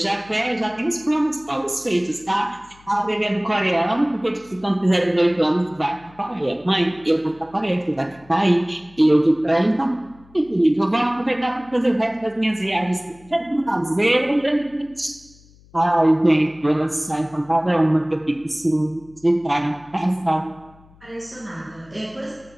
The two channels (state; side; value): noise; left; hum, 27 dB below the sound